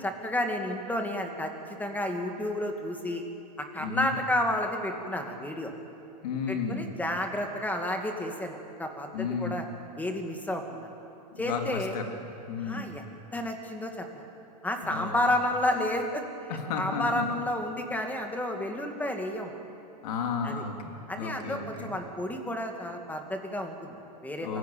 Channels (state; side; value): normal; both; correlation 0.48